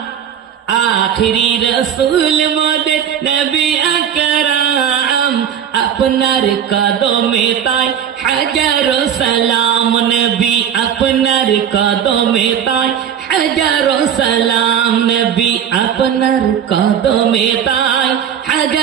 আখিরি রসুল মোদের নবী আকরাম আপনার কদমে তাই হাজারো সালাম নবী আপনার কদমে তাই হাজারো সালাম নবী আপনার কদমে তাই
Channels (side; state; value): left; quieter; 8.9 dB